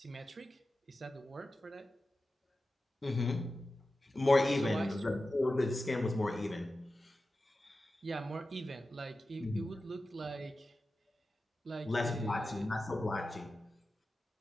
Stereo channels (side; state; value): both; normal; correlation 0.93